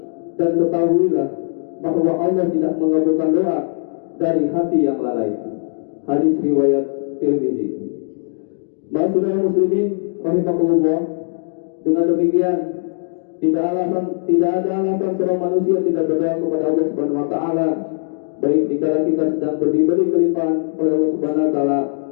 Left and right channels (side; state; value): right; silent; digital silence